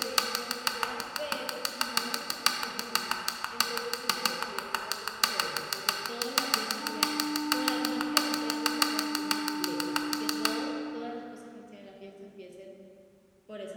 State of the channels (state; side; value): identical; both; correlation 1.00